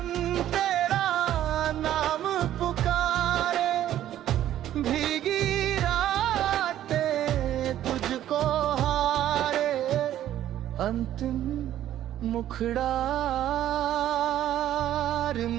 तेरा नाम पुकारे, भीगी रातें तुझको हारे, अंतिम मुखड़ा। रिम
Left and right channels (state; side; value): quieter; left; 12.1 dB